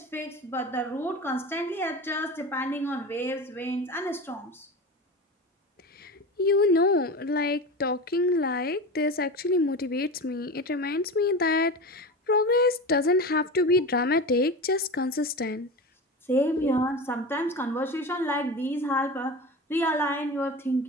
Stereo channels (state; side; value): normal; both; correlation 0.28